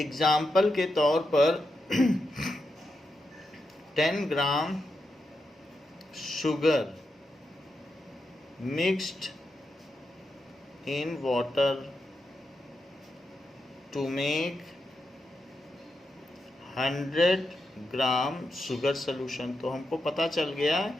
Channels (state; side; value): normal; both; correlation 0.86